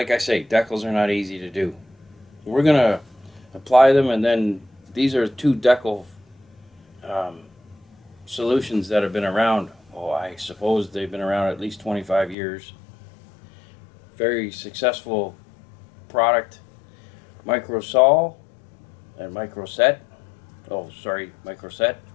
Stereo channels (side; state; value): right; drops out; at 12.4 s